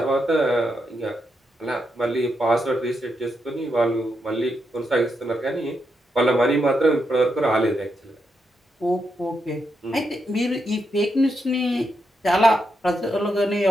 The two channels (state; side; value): normal; both; correlation 0.83